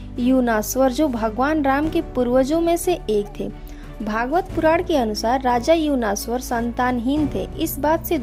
युनास्वर, जो भगवान राम के पूर्वजों में से एक थे। भागवत पुराण के अनुसार राजा युनास्वर संतानहीन थे। इस बात से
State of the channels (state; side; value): identical; both; correlation 1.00